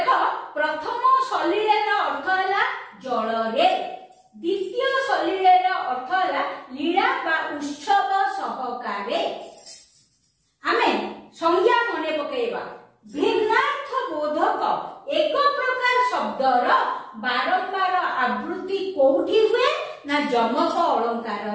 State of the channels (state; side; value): identical; both; correlation 1.00